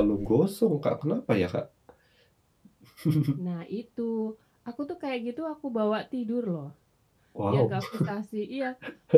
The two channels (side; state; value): both; identical; correlation 1.00